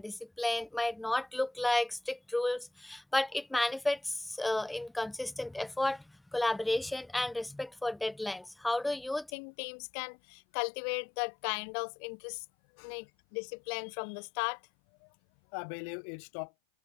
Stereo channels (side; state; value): right; drops out; at 9.3 s